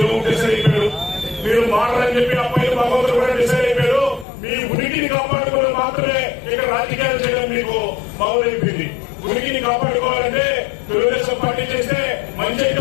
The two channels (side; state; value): right; drops out; at 4.2 s